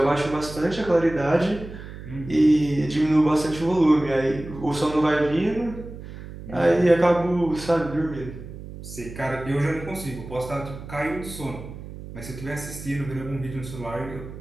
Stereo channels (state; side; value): noise; right; hum, 13 dB below the sound